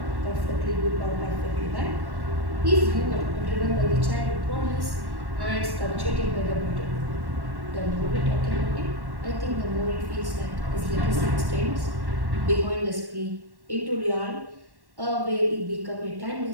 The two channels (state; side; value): late; left; 1.1 ms